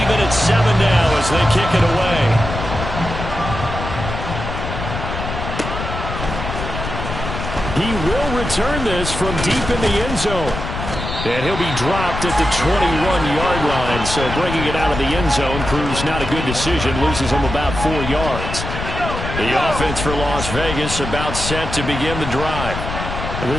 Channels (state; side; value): noise; left; rumble, 6 dB below the sound